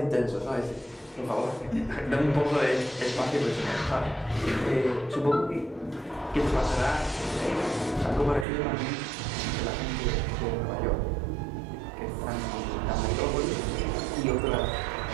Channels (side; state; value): left; drops out; at 8.5 s